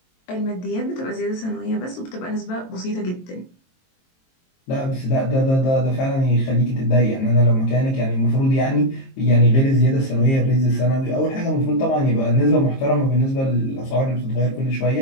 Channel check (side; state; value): right; late; 22 ms